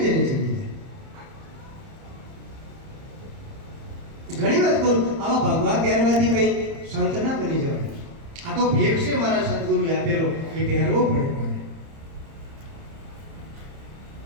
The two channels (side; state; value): left; late; 30 ms